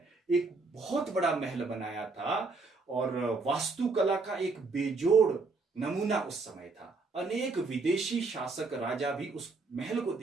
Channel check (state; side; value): quieter; left; 4.0 dB